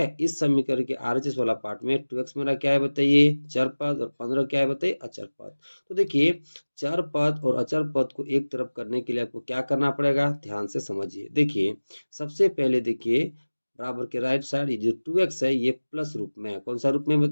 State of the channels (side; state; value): both; inverted; correlation -1.00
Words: इस समीकरण के आरएचएस वाला पार्ट में 2x मेरा क्या है बताइए, चर पद, और 15 क्या है बताइए, अचर पद। तो देखिए, चर पद और अचर पद को एक तरफ करने के लिए आपको क्या करना पड़ेगा, ध्यान से समझिए। देखिए, सबसे पहले देखिए, बराबर के राइट साइड ये जो 2x है ये प्लस रूप में है। कौन सा रूप में